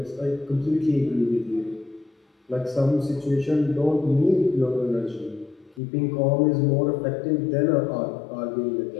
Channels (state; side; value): drops out; right; at 5.8 s